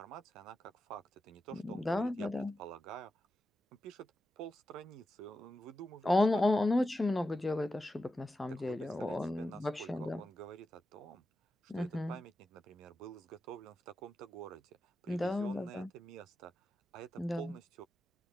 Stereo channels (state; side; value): normal; both; correlation 0.91